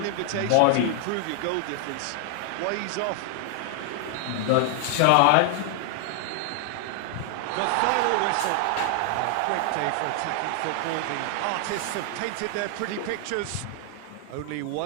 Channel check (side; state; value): both; different; correlation 0.00